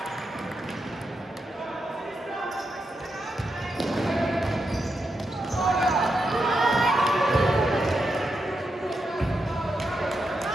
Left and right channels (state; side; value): normal; both; correlation 0.85